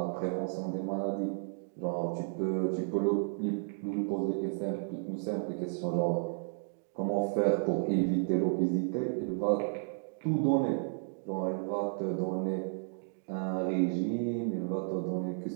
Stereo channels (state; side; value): silent; left; digital silence